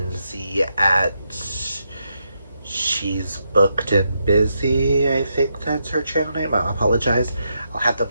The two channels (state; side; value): inverted; both; correlation -0.82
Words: at She's Booked and Busy. I think that's her channel name. I apologize. I'll have them